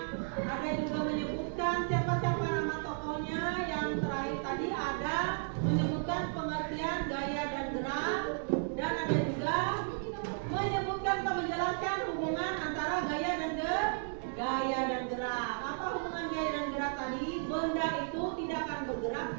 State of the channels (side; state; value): left; silent; digital silence